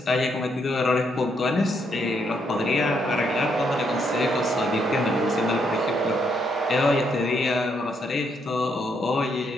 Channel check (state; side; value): normal; both; correlation 0.75